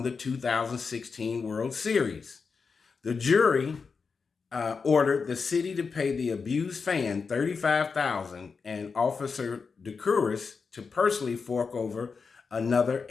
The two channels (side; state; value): right; quieter; 5.1 dB